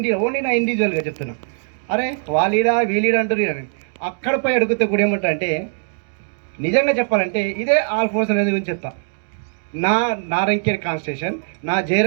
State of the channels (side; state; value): left; silent; digital silence